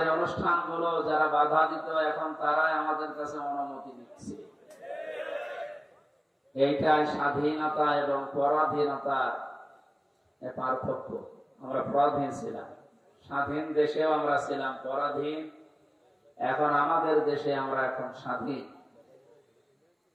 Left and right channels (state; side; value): identical; both; correlation 1.00